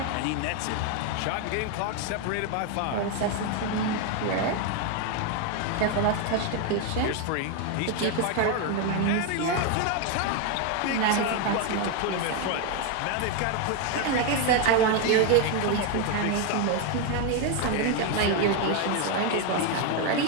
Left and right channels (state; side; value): different; both; correlation 0.01